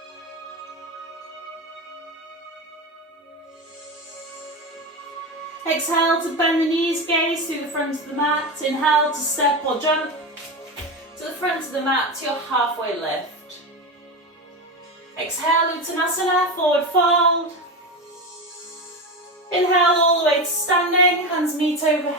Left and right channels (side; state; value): both; normal; correlation 0.19